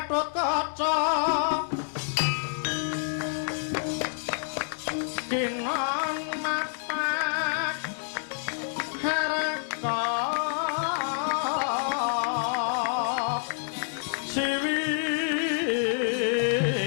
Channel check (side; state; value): right; silent; digital silence